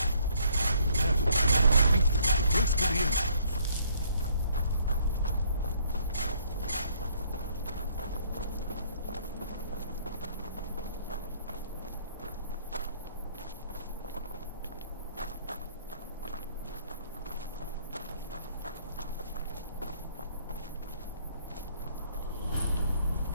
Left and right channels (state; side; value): inverted; both; correlation -0.64